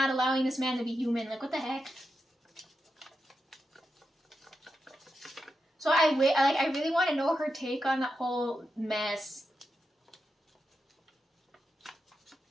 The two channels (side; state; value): both; normal; correlation 0.88